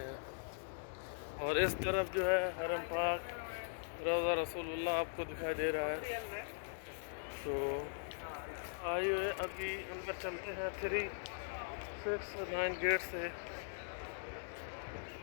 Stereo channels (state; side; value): silent; right; digital silence